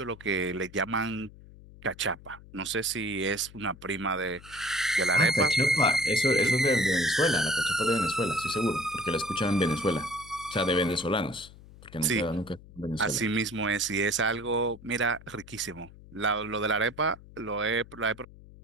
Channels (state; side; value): noise; left; hum, 20 dB below the sound